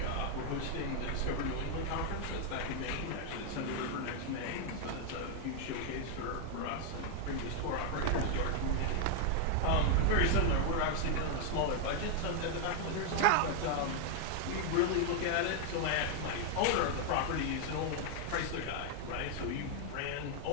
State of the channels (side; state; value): both; different; correlation 0.00